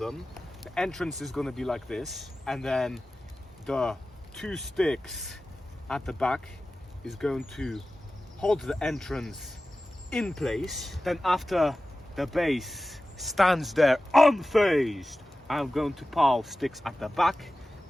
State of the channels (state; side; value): normal; both; correlation 0.95